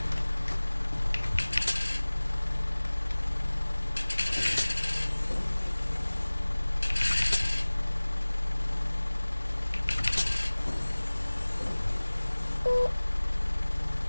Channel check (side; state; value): both; inverted; correlation -1.00